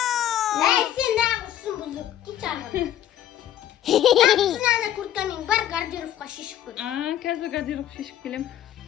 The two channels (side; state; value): right; quieter; 11.3 dB